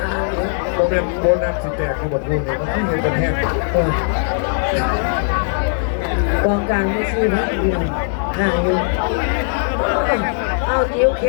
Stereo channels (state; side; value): silent; right; digital silence